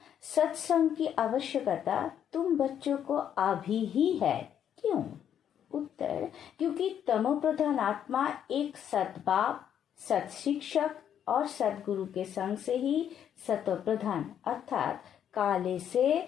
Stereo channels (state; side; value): quieter; right; 9.3 dB